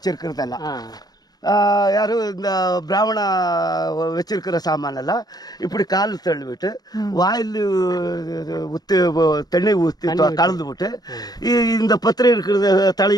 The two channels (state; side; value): late; right; 0.19 ms